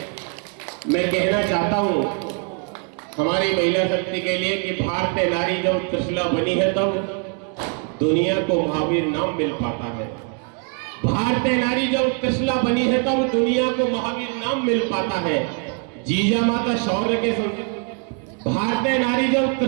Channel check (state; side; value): quieter; left; 39.6 dB